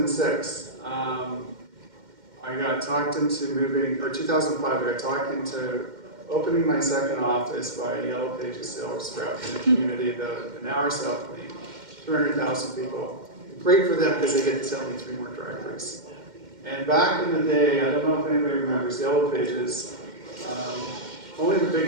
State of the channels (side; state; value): left; late; 2.1 ms